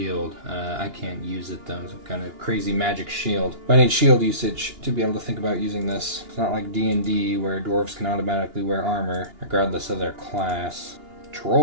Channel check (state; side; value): late; left; 2.9 ms